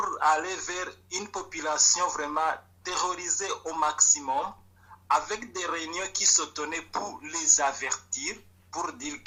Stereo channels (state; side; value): identical; both; correlation 1.00